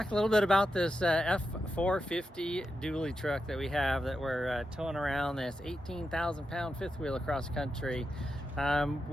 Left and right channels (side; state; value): both; normal; correlation 0.88